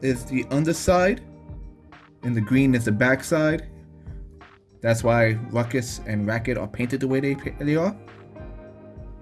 the underside and the green is the backside. That's why Ruckus and Racket are painted the way they are.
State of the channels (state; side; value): identical; both; correlation 1.00